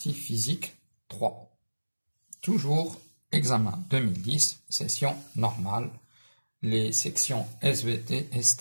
physique 3. Toujours examen 2010, session normale, les sections SVT,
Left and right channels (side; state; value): both; inverted; correlation -1.00